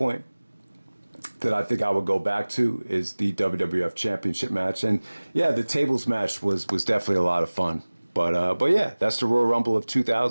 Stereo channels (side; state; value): both; inverted; correlation -1.00